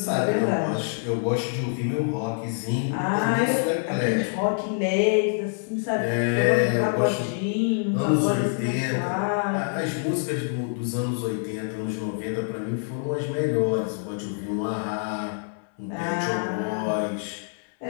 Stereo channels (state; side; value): silent; right; 61 dB below the other